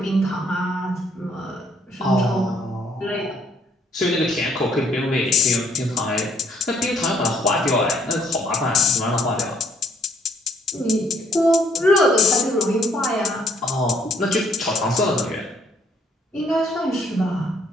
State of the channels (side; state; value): both; normal; correlation 0.67